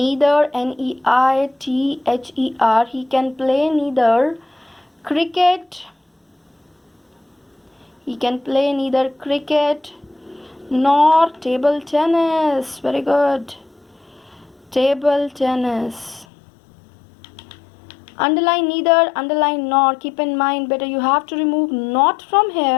Neither. He can play neither cricket. He can play neither cricket nor table tennis. Very good. Table tennis. Underline neither, underline nor. Keep in mind, better you have to remove not from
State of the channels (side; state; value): right; drops out; at 16.2 s